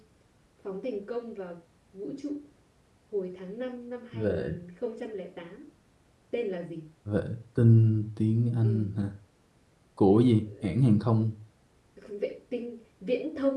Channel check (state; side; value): identical; both; correlation 1.00